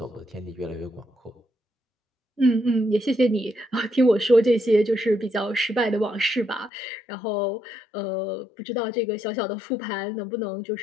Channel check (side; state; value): right; drops out; at 6.7 s